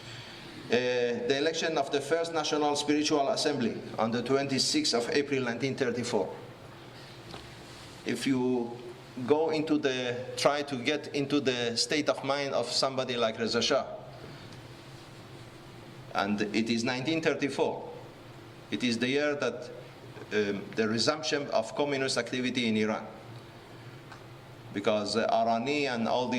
The election of the first National Spiritual Assembly on the 26th of April 1934. If you go try to get into the state of mind of somebody like Reza Shah, and it is 1934. It is the year that the resumption of communist activity in Iran, because Arani and all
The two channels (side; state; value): both; identical; correlation 1.00